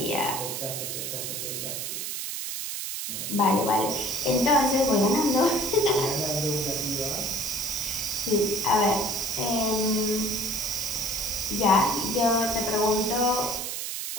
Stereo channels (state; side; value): noise; right; hiss, 4 dB below the sound